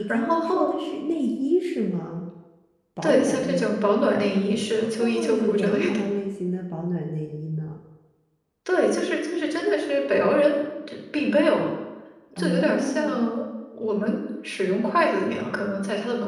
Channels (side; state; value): both; identical; correlation 1.00